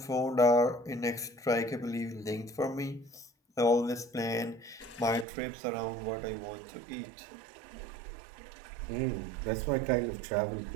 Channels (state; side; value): drops out; left; at 5.2 s